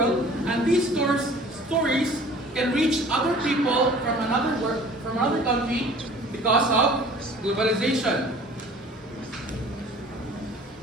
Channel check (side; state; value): both; normal; correlation 0.48